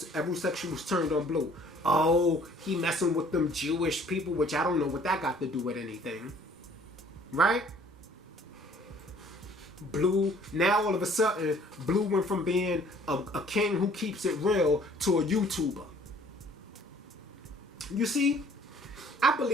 every section was turned on Blue. Oh, he messing with them Jewish people, which I don't know what that got to do with anything. Right? Blue, now all of a sudden, Blue went from being a king who keeps it real to a YouTuber. You see? I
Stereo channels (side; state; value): both; normal; correlation 0.56